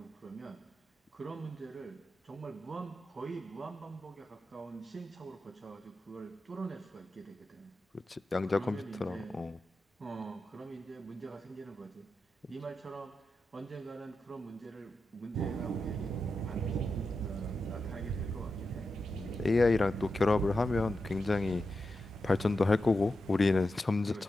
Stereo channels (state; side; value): normal; both; correlation 0.90